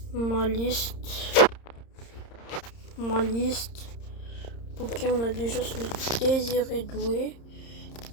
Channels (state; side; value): late; right; 30 ms